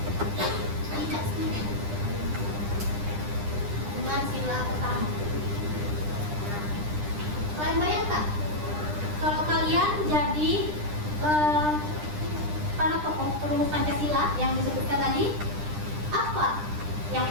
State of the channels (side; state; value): left; late; 9.9 ms